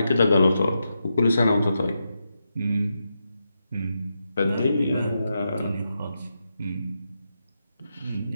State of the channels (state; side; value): inverted; both; correlation -0.86